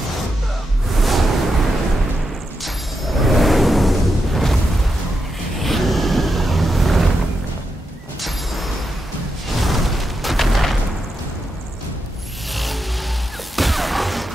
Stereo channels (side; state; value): both; normal; correlation 0.85